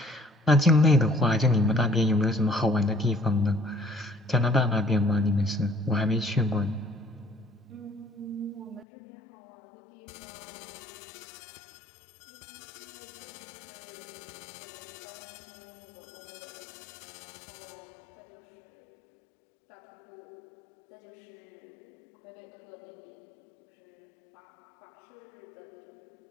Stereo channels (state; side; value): drops out; right; at 8.8 s